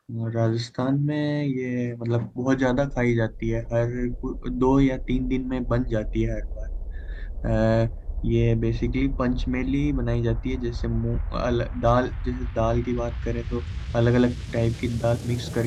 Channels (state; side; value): identical; both; correlation 1.00